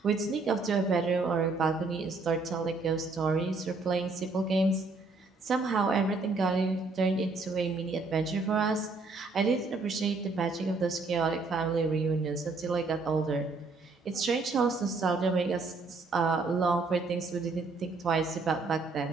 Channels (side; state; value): left; quieter; 3.7 dB